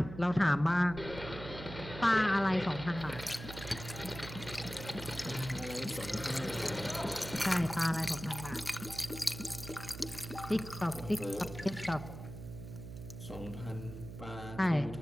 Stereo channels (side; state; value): right; noise; hum, 11 dB below the sound